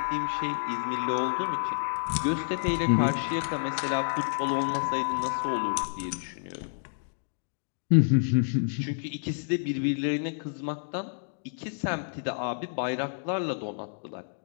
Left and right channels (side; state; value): right; silent; digital silence